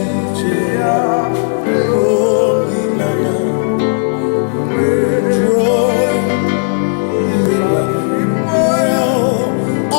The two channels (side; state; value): right; silent; digital silence